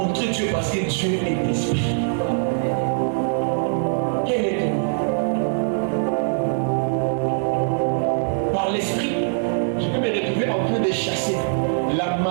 Dieu parce que Dieu est l'esprit. Quel est ton nom? Par l'esprit, je peux me retrouver en train de chasser la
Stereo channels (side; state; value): left; silent; digital silence